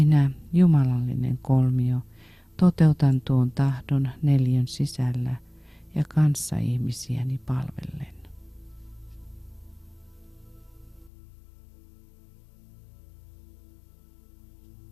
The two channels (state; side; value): drops out; right; at 11.1 s